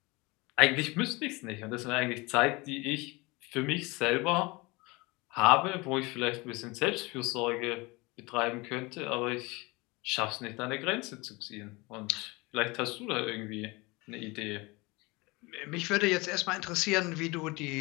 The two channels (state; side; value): quieter; right; 24.7 dB